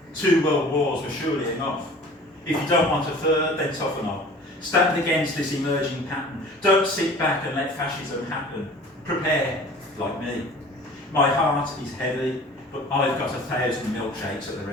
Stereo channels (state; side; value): normal; both; correlation 0.45